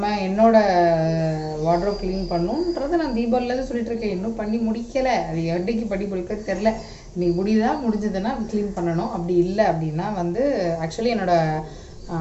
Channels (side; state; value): both; identical; correlation 1.00